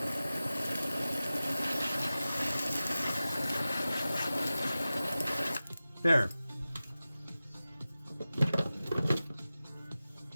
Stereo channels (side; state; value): both; inverted; correlation -0.96